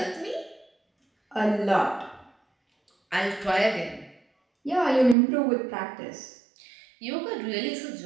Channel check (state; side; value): drops out; left; at 5.2 s